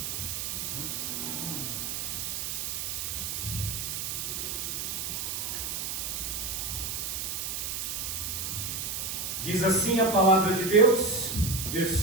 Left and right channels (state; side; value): noise; right; hiss, 3 dB below the sound